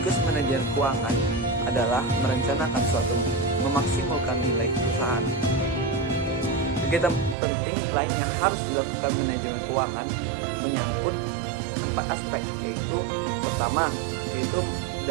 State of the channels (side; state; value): left; drops out; at 7.4 s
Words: manajer keuangan adalah merencanakan suatu memaksimalkan nilai perusahaan. Kegiatan penting lain yang harus dilakukan manajemen keuangan menyangkut 4 aspek, yaitu pertama, yaitu